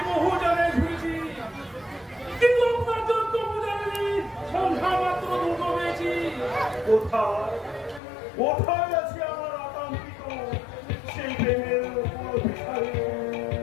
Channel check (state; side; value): drops out; right; at 8.0 s